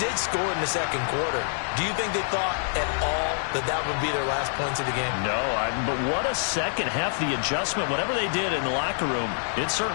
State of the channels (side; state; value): right; silent; 61 dB below the other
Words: did score in the second quarter. Do you think they thought at all that that would be their last points of the game? No, but what a second half. The adjustment, whatever they did in the locker room, it